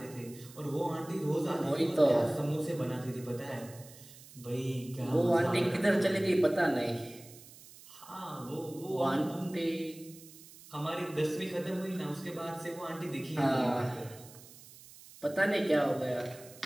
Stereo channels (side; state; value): right; noise; hiss, 20 dB below the sound